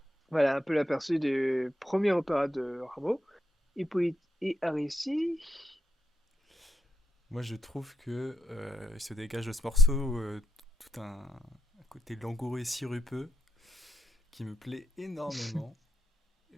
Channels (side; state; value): both; normal; correlation 0.83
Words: Voilà un peu l'aperçu du premier opéra de Rameau, Hippolyte et Aricie. Moi, je trouve que il se dégage de ce morceau tout un côté langoureux et sirupeux qui me plaît énormément.